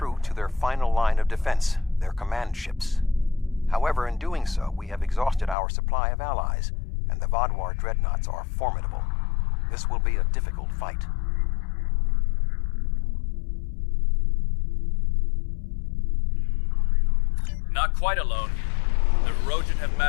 to their final line of defense, their command ships. However, in doing so, we have exhausted our supply of allies, and the Vaadwaur dreadnoughts are formidable. This will be a difficult fight. Not quite alone. The Rojan have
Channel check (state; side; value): drops out; right; at 5.6 s